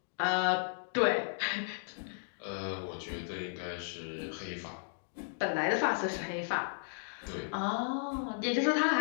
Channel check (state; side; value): silent; right; digital silence